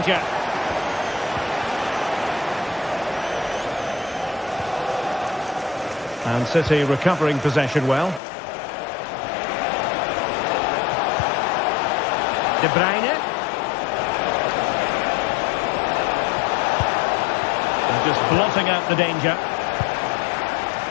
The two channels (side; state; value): right; drops out; at 8.2 s